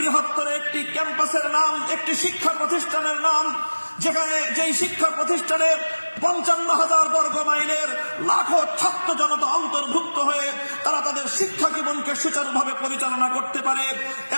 একটি ক্যাম্পাসের নাম, একটি শিক্ষা প্রতিষ্ঠানের নাম, যেখানে যেই শিক্ষা প্রতিষ্ঠানে 55,000 বর্গ মাইলের লাখো ছাত্র জনতা অন্তর্ভুক্ত হয়ে তারা তাদের শিক্ষা জীবনকে সুচারুভাবে পরিচালনা করতে পারে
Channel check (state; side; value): inverted; both; correlation -1.00